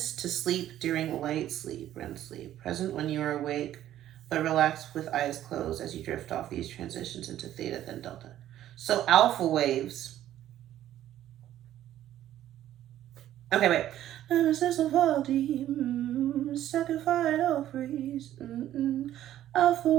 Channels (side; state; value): left; quieter; 12.4 dB